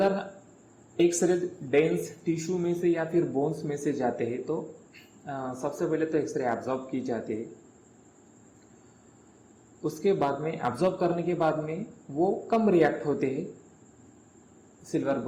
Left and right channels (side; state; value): both; identical; correlation 1.00